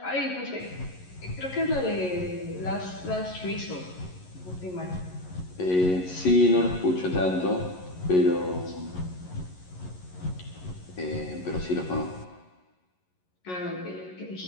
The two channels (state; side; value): late; right; 11 ms